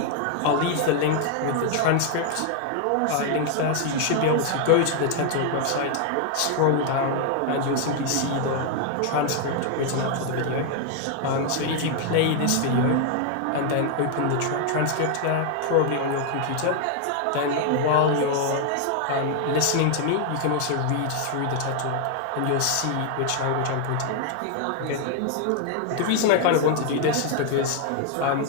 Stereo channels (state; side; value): different; both; correlation 0.00